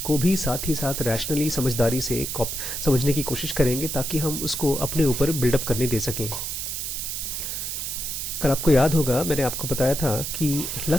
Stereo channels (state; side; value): noise; right; hiss, 4 dB below the sound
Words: को भी साथ ही साथ रैशनली समझदारी से समझने की कोशिश करेंगे ताकि हम उसको अपने ऊपर बिल्डअप करने दे सकें। कल आपको याद होगा मैंने आपको बताया था कि